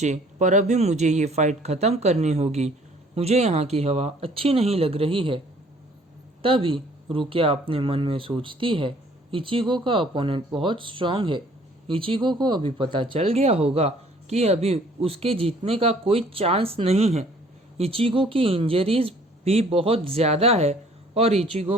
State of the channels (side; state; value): both; normal; correlation 0.57